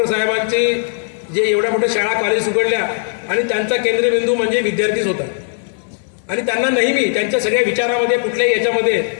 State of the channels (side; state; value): right; silent; 68 dB below the other